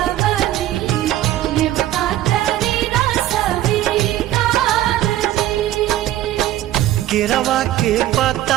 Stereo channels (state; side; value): quieter; left; 13.7 dB